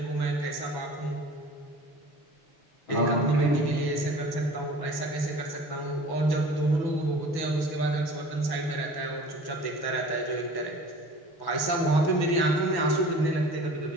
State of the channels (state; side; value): late; right; 6.1 ms